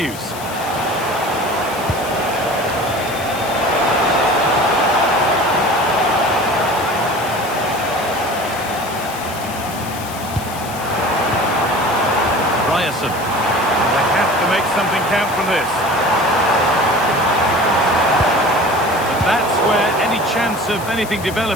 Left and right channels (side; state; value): left; noise; hiss, 14 dB below the sound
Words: Ryerson. They have to make something count from this. And that's where any chance of anything